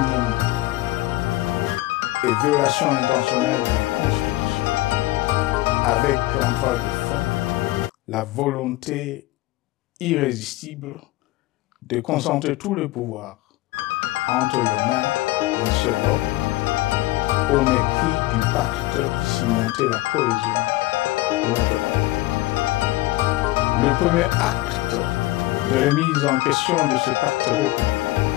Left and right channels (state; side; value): quieter; right; 18.5 dB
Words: et violations intentionnelles de la Constitution, avec en toile de fond la volonté irrésistible de concentrer tout le pouvoir entre les mains d'un seul homme, au mépris du pacte qui cimentait la cohésion de notre peuple. Le premier acte de remise en question de ce pacte républicain,